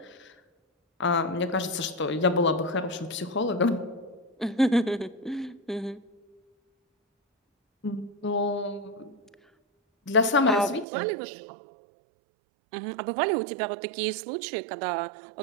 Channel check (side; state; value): left; drops out; at 10.9 s